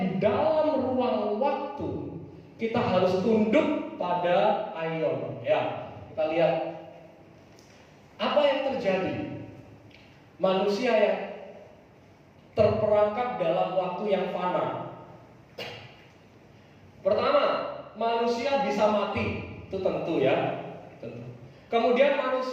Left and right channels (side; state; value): both; identical; correlation 1.00